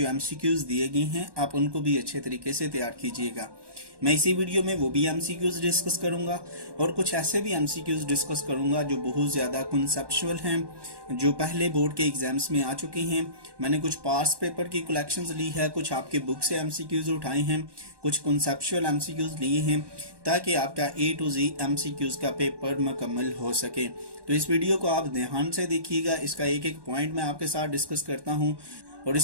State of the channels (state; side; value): late; left; 1.2 ms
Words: एमसीक्यूज़ दिए गए हैं आप उनको भी अच्छे तरीके से तैयार कीजिएगा। मैं इसी वीडियो में वो भी एमसीक्यूज़ डिस्कस करूंगा और कुछ ऐसे भी एमसीक्यूज़ डिस्कस करूंगा जो बहुत ज़्यादा कॉन्सेप्चुअल हैं, जो पहले बोर्ड के एग्जाम्स में आ चुके हैं। मैंने कुछ पास्ट पेपर की कलेक्शंस ली है, कुछ आपके बुक से एमसीक्यूज़ उठाए हैं, कुछ कॉन्सेप्चुअल एमसीक्यूज़ लिए हैं ताकि आपका ए टू जी एमसीक्यूज़ का पेपर मुकम्मल हो सके। तो इस वीडियो को आप ध्यान से देखिएगा, इसका एक एक पॉइंट मैं आपके साथ डिस्कस करता हूँ। और